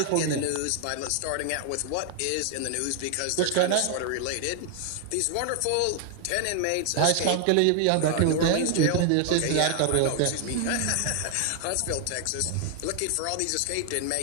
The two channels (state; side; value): different; both; correlation 0.00